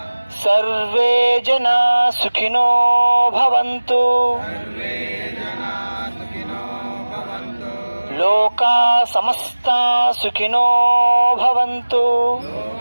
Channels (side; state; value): both; inverted; correlation -1.00